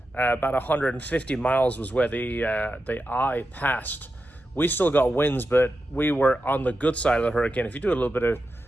about 150 miles was where the eye passed. We still got winds, but we were on the good side of the hurricane. If you do a little bit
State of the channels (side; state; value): both; normal; correlation 0.89